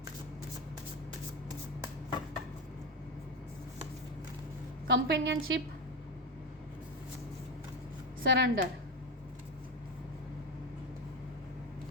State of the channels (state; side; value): normal; both; correlation 0.16